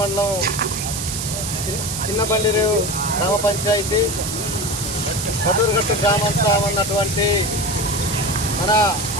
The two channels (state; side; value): noise; right; hiss, 5 dB below the sound